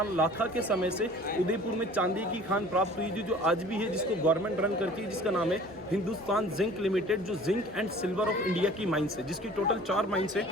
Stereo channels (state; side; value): normal; both; correlation 0.47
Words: लाखा के समय से उदयपुर में चांदी की खान प्राप्त हुई थी, जो आज भी है, जिसको गवर्नमेंट रन करती है, जिसका नाम है हिंदुस्तान जिंक लिमिटेड, जो zinc and silver of India की माइंस है, जिसकी टोटल 4 माइंस है,